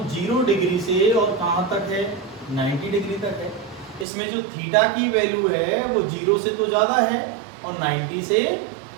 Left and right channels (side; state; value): left; drops out; at 4.0 s